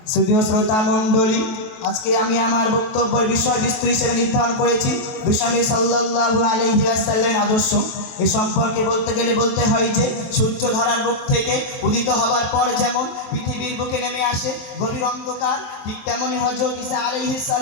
সুধীয় শ্রোতা মণ্ডলী, আজকে আমি আমার বক্তব্যের বিষয়বস্তু হিসেবে নির্ধারণ করেছি বিশ্বনবী সাল্লাল্লাহু আলাইহি ওয়াসাল্লামের আদর্শ। এ সম্পর্কে বলতে গেলে বলতে হয় যে সূর্য ধরার মুখ থেকে উদিত হবার পর যেমন পৃথিবীর বুকে নেমে আসে গভীর অন্ধকার, ঠিক তেমনই হযরত ঈসা আলাইহিস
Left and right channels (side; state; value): right; late; 23 ms